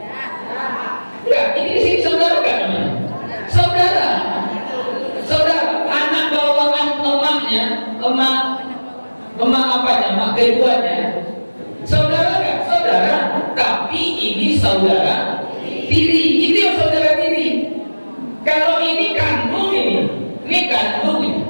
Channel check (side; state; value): both; inverted; correlation -1.00